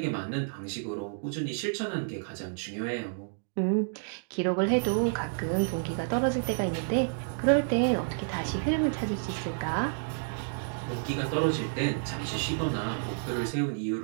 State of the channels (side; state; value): left; silent; digital silence